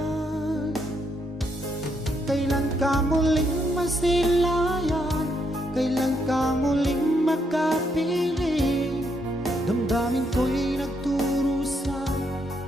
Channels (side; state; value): both; normal; correlation 0.76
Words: Kailan ka muling masilayan? Kailan ka muling makapiling? Damdamin ko'y nagturusan,